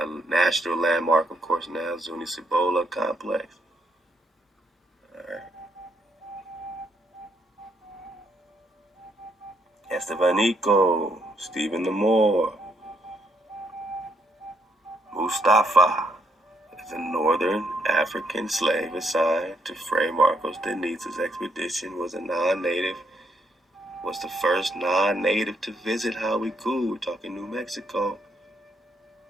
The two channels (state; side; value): normal; both; correlation 0.74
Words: national landmark, of course, now, Zuni-Cibola complex. Alright. Estebanico, Stephen the Moor, Mustafa is a northern African slave assigned to Fray Marcos de Niza's expedition, was the first non-native to visit Hawikuh. We're talking New Mexico.